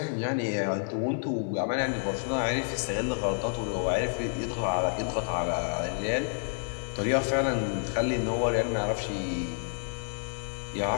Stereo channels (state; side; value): silent; right; digital silence